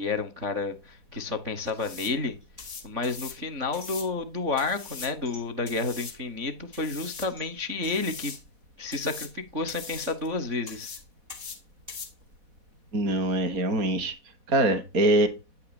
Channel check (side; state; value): left; late; 4.1 ms